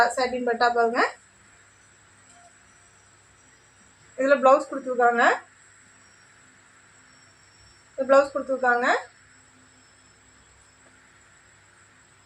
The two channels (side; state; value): both; identical; correlation 1.00